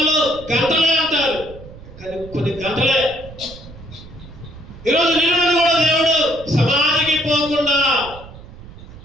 గంటలే అంటారు. కానీ కొన్ని గంటలే. ఈరోజు నిన్న కూడా దేవుడు సమాధికి పోకుండా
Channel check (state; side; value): noise; right; rumble, 17 dB below the sound